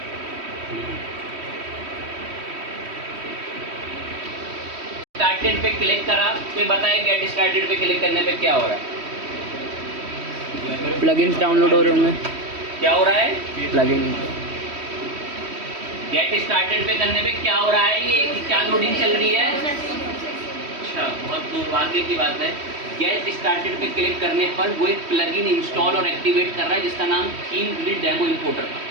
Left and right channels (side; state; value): left; late; 3.1 ms